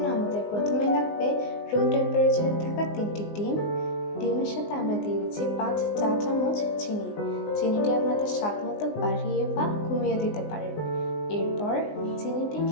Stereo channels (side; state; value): right; late; 19 ms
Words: আমাদের প্রথমে লাগবে রুম টেম্পারেচারে থাকা 3টি ডিম। ডিমের সাথে আমরা দিয়ে দিচ্ছি 5 চা চামচ চিনি। চিনিটি আপনাদের স্বাদ মতো বাড়িয়ে বা কমিয়ে দিতে পারেন। এরপর